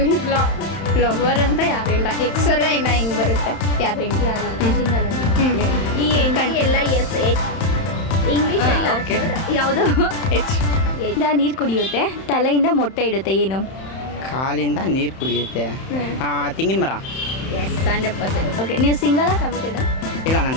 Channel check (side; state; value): right; late; 31 ms